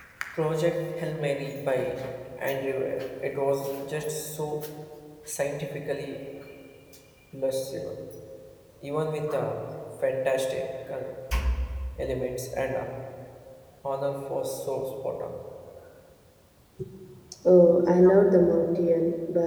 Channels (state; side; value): identical; both; correlation 1.00